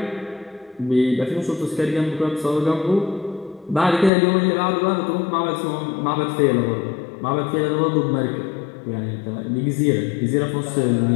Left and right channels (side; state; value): right; drops out; at 4.1 s